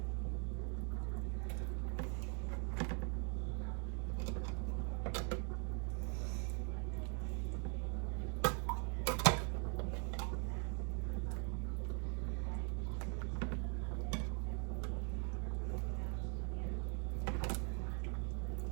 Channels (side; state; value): left; quieter; 38.5 dB